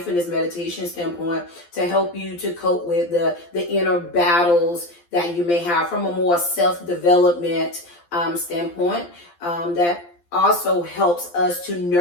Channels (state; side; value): late; right; 12 ms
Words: meditation standpoint to help you to cope with the inner battles that you may have from a more self-development standpoint that also helps us to